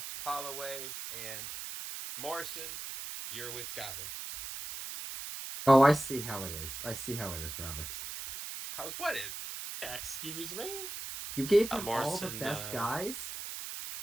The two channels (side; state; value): right; noise; hiss, 7 dB below the sound